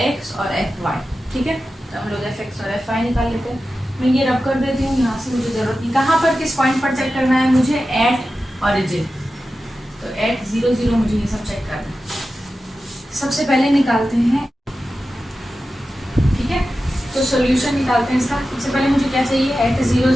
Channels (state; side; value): normal; both; correlation 0.93